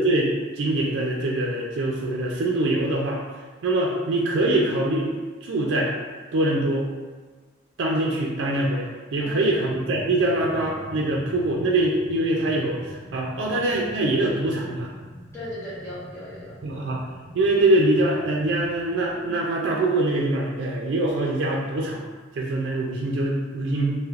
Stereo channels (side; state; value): both; normal; correlation 0.35